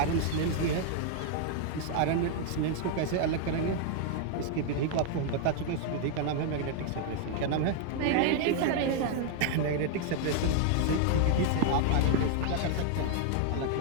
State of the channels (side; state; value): both; different; correlation 0.00